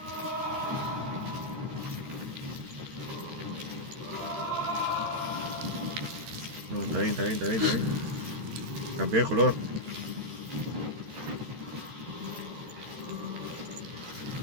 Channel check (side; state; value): left; late; 13 ms